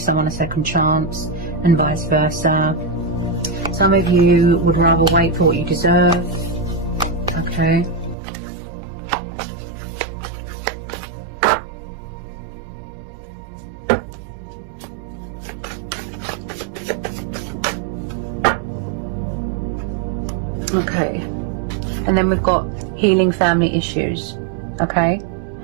someone a second chance, and vice versa. Some of you would rather wait for what you deserve. Okay. Okay. And then we've got healing family issues. Okay.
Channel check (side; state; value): left; drops out; at 8.2 s